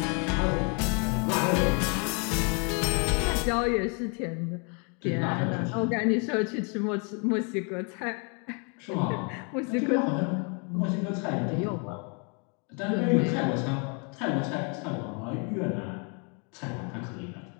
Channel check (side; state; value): right; quieter; 36.1 dB